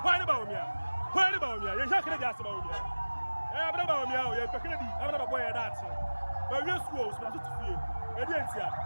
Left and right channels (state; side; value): inverted; both; correlation -1.00